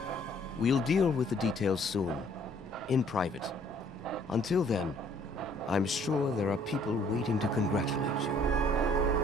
We'll deal with the details soon, in private. Until then, I'm sure there are people waiting to congratulate you.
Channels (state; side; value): normal; both; correlation 0.61